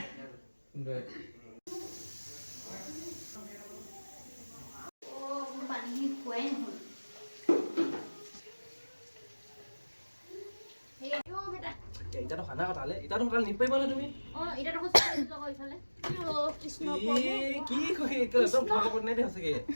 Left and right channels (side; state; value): both; inverted; correlation -1.00